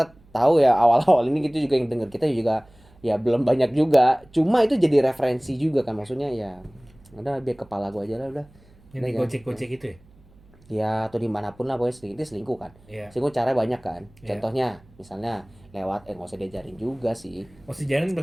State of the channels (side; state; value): right; noise; hum, 27 dB below the sound